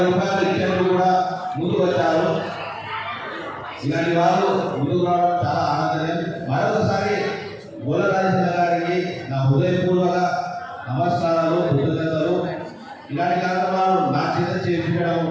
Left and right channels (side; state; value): both; identical; correlation 1.00